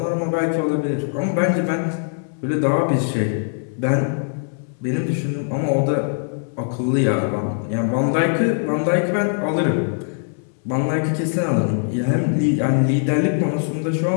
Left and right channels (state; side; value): silent; right; 65 dB below the other